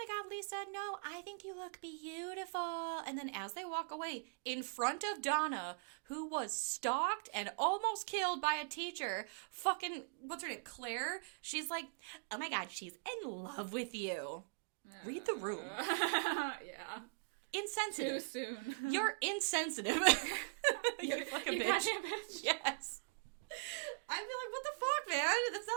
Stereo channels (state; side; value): quieter; left; 36.0 dB